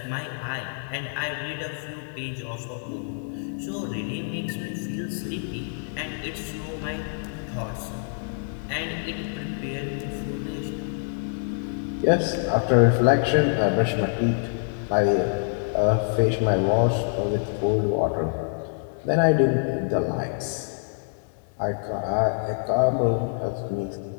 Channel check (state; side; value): silent; right; 61 dB below the other